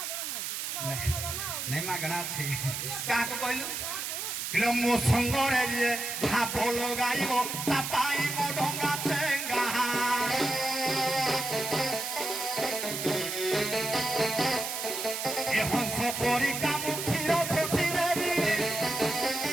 ନାଇଁ ମାଗଣା ଅଛି କାହାକୁ କହିଲୁ କିଲୋ ମୋ ସଙ୍ଗରେ ଯିଏ ଭାବ ଲଗାଇବ ତା ପାଇଁ ମୋ ଡଙ୍ଗା ଚେଙ୍ଗା ଏ ହଂସ ପରି କାମୁ କ୍ଷୀର ଶୋଷି ଦେବି ଏ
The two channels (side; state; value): right; noise; hiss, 4 dB below the sound